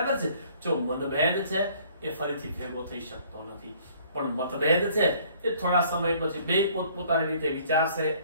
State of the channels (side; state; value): both; inverted; correlation -0.58